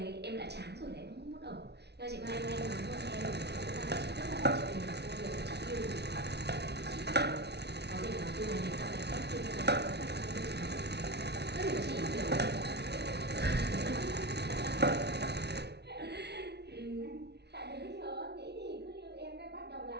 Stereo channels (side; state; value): left; late; 0.49 ms